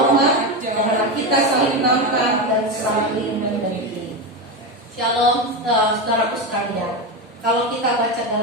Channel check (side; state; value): both; normal; correlation 0.15